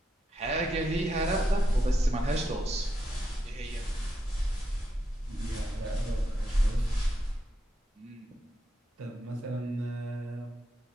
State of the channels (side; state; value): both; normal; correlation 0.83